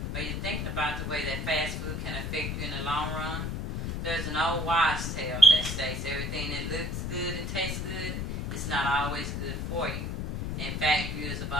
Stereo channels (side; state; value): left; noise; rumble, 3 dB below the sound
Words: are you thinking about the way that fast food can affect you in the long run? There's an old wives' tale that states everything that looks good and tastes good is not always good for you. In fact, years of